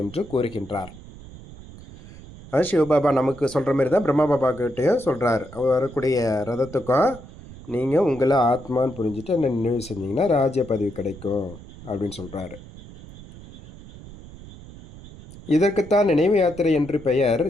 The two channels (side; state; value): right; noise; rumble, 17 dB below the sound